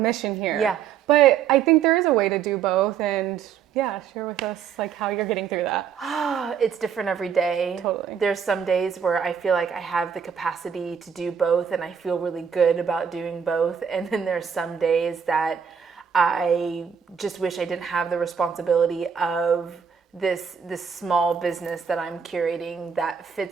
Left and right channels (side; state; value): left; quieter; 7.3 dB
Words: here. Yeah. But I think there is a way to do both, and share with us how you're getting through that. It's different every day. Totally. There's some days where I feel like I have the capacity to do both, and I feel really good about doing both. And then there's some days that I just wish I didn't have the responsibility of this small business that I'm curating that